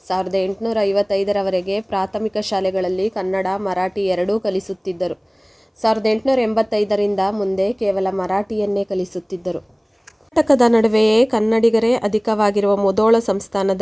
1855ರವರೆಗೆ ಪ್ರಾಥಮಿಕ ಶಾಲೆಗಳಲ್ಲಿ ಕನ್ನಡ, ಮರಾಠಿ ಎರಡೂ ಕಲಿಸುತ್ತಿದ್ದರು. 1885ರಿಂದ ಮುಂದೆ ಕೇವಲ ಮರಾಠಿಯನ್ನೇ ಕಲಿಸುತ್ತಿದ್ದರು. ಕರ್ನಾಟಕದ ನಡುವೆಯೇ ಕನ್ನಡಿಗರೇ ಅಧಿಕವಾಗಿರುವ ಮುಧೋಳ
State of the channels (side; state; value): both; identical; correlation 1.00